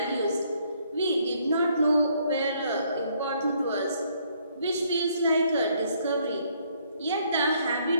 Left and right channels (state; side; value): inverted; both; correlation -0.68